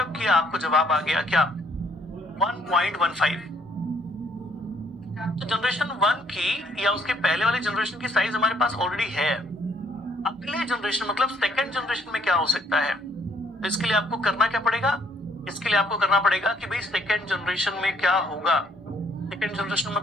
किया, आपको जवाब आ गया क्या 1.15। तो जनरेशन 1 की या उसके पहले वाले जनरेशन की साइज हमारे पास ऑलरेडी है। अगले जनरेशन मतलब सेकंड जनरेशन में क्या हो सकता है, तो इसके लिए आपको करना क्या पड़ेगा, इसके लिए आपको करना पड़ेगा कि भाई सेकंड जनरेशन में क्या होगा। सेकंड जनरेशन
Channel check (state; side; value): normal; both; correlation 0.66